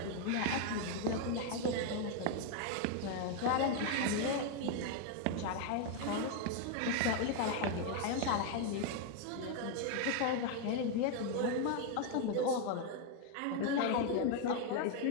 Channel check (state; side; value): different; both; correlation 0.01